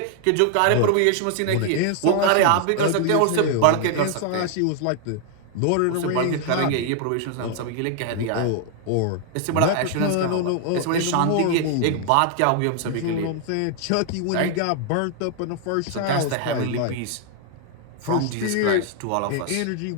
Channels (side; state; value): both; different; correlation 0.00